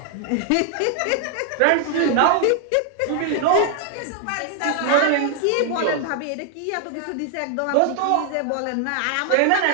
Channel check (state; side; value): different; both; correlation 0.00